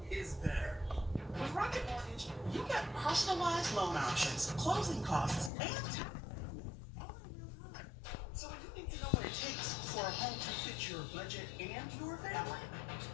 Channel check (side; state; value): right; drops out; at 5.5 s